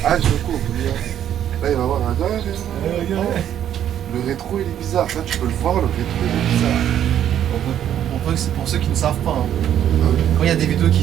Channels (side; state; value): left; quieter; 10.4 dB